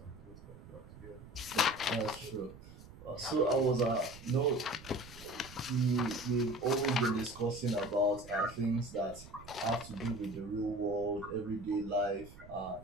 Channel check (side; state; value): right; noise; rumble, 18 dB below the sound